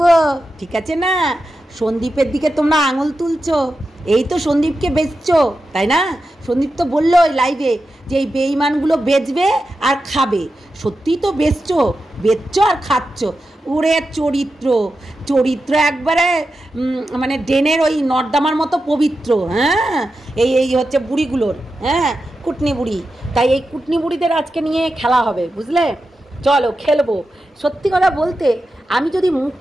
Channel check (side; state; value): both; normal; correlation 0.90